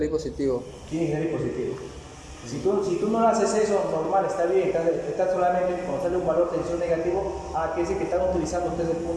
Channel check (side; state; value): both; identical; correlation 1.00